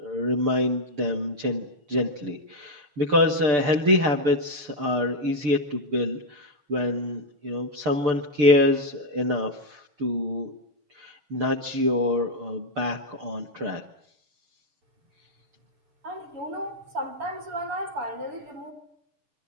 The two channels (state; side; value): late; left; 6.8 ms